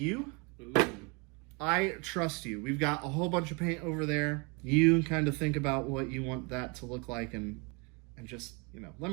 Ooh. I trust you. We've got a whole bunch of paint over there. You kind of think about what you want that to look like, and just, you know, let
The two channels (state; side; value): quieter; left; 31.1 dB